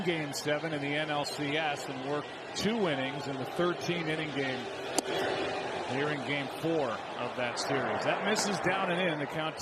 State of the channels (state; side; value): identical; both; correlation 1.00